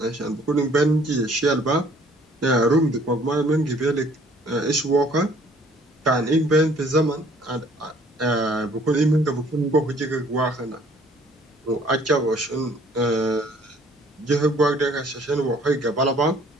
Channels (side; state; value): both; normal; correlation 0.58